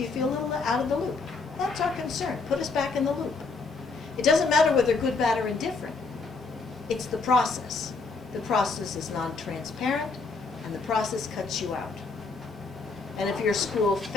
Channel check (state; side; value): quieter; right; 4.1 dB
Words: you feel a little out of the loop? That's our concern. Put us back in the loop. It doesn't matter whether good, bad, or indifferent. It's the process. The process is non-transparent, and the process cuts you out. And if your school